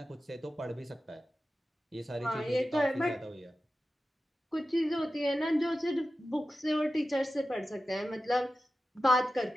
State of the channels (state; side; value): normal; both; correlation 0.93